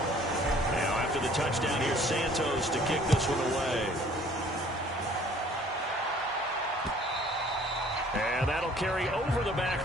Now after the touchdown, here's Santos to kick this one away. And that'll carry over the back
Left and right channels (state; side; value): normal; both; correlation 0.55